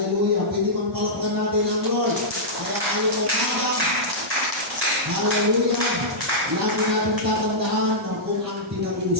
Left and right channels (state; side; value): normal; both; correlation -0.12